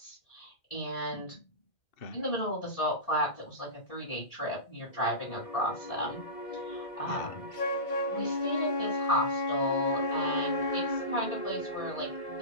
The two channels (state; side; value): late; right; 2.2 ms